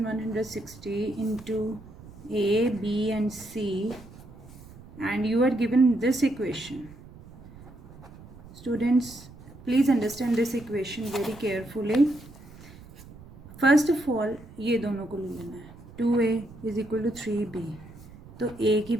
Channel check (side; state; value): right; noise; rumble, 19 dB below the sound